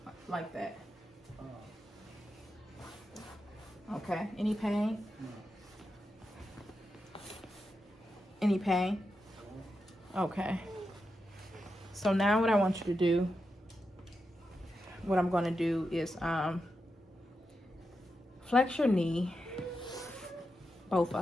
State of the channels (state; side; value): normal; both; correlation 0.88